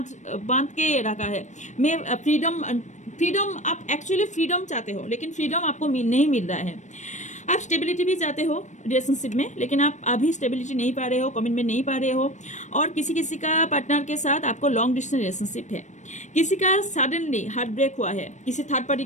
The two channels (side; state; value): right; late; 0.35 ms